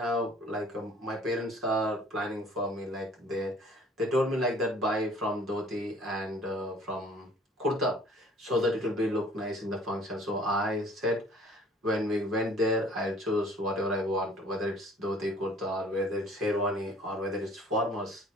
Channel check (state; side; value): normal; both; correlation 0.53